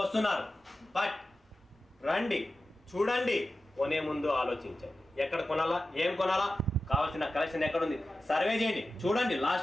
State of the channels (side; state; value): both; normal; correlation 0.93